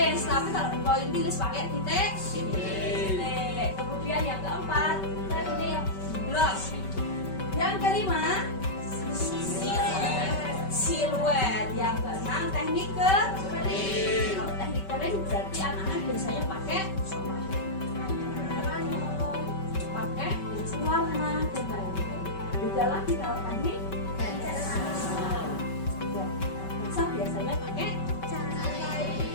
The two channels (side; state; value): right; late; 5.2 ms